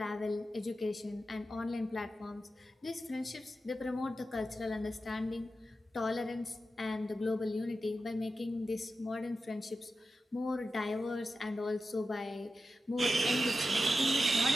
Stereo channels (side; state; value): both; normal; correlation 0.91